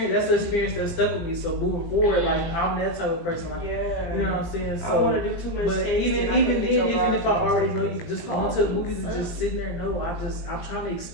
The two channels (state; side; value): late; right; 18 ms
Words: That's an experience that stuck with me. So moving forward, like I'm that type of person. Like you know what I'm saying. I don't want So. to do too much. But tasting. even I then, think that your even if I body- already know you, just going to the movies and just sitting there, no, I'm trying to